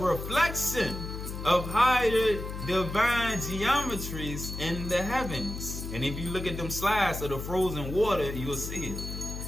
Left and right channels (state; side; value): noise; left; hum, 7 dB below the sound